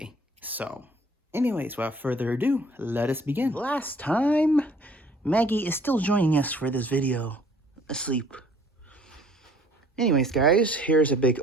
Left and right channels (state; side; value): normal; both; correlation 0.56